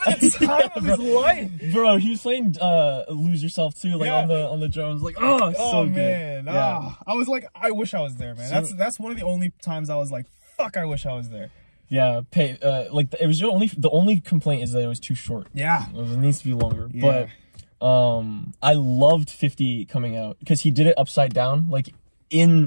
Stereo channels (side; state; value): both; inverted; correlation -1.00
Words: the time of his life. Bro, he was playing Lose Yourself too, like on the drums. Like, so man. good. Yeah. I was like, I wish I was there, man. That's one of the only times I was like, fuck, I wish I was there. Yeah, like it was the only complaint is that it was too short. Yeah. It needs to be longer. Yeah. But I loved 50 coming out because he did it upside down, like